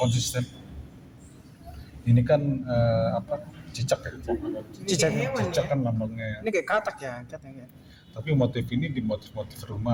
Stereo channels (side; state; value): both; identical; correlation 1.00